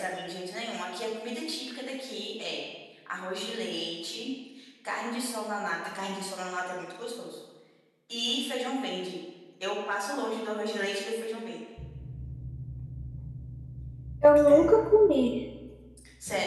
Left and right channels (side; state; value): both; identical; correlation 1.00